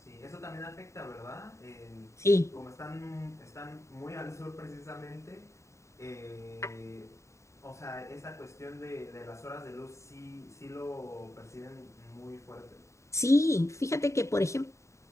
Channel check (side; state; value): right; late; 0.14 ms